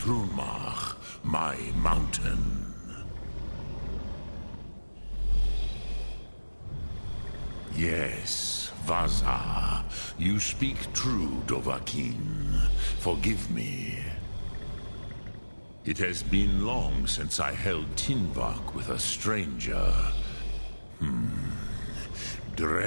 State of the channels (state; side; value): inverted; both; correlation -1.00